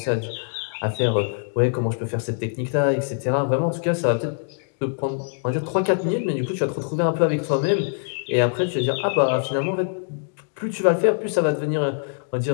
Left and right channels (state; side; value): silent; right; digital silence